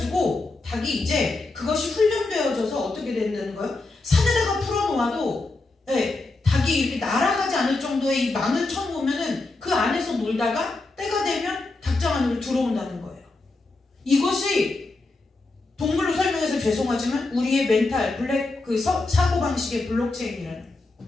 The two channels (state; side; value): quieter; right; 3.3 dB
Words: 닭이 이제 그것이 훈련되어져서 어떻게 된다는 거예요? 산에다가 풀어놓아도 네, 닭이 이렇게 날아가지 않을 정도의 이 망을 쳐놓으면은 그 안에서 놀다가 때가 되면 닭장 안으로 들어온다는 거예요. 이것이 동물로 설명해서 죄송하지만 우리의 멘탈 블랙 사고방식의 블록체인이라는